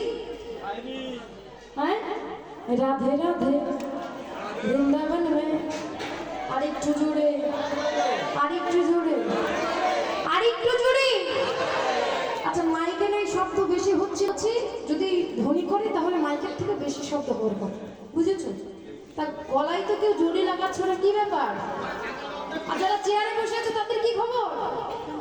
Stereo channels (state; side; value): identical; both; correlation 1.00